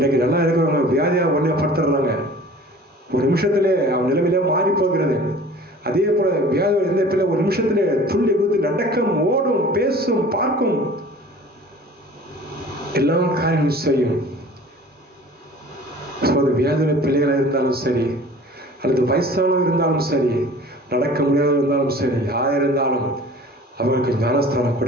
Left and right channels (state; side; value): normal; both; correlation 0.45